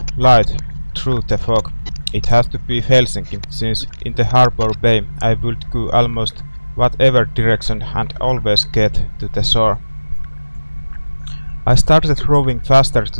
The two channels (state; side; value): inverted; both; correlation -1.00